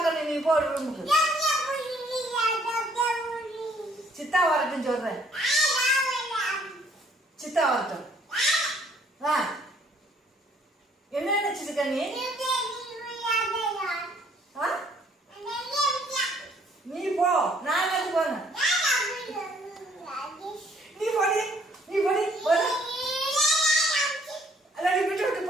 நீ போ ரூமுக்கு. சித்தா வரட்டும் சொல்றேன். சித்தா வரட்டும். என்ன நினைச்சிருக்க நீ? நீ போ, நான் எது போன? நீ போடி, நீ போடி, போடு. அல்ல நீ விட்டு விட்டு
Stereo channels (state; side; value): normal; both; correlation 0.63